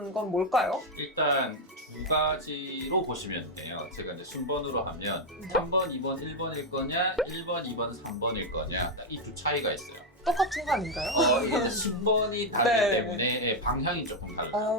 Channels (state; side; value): normal; both; correlation 0.03